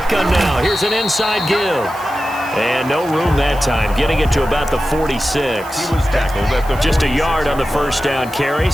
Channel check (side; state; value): right; noise; hiss, 20 dB below the sound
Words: now. Here's an inside give. And no room that time. Getting it to about the 46. He was tackled at the Just a yard on the first down carry,